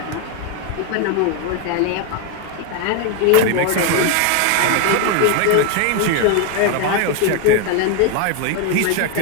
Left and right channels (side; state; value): both; different; correlation 0.01